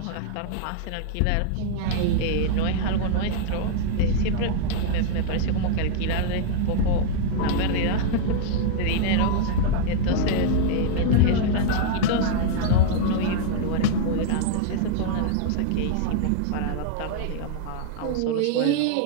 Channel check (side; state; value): both; different; correlation -0.01